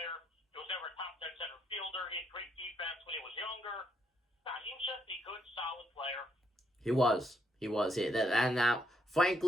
He was never top 10 center fielder. He had great defense when he was younger. He was just a good, solid player. He was. And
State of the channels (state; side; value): normal; both; correlation 0.74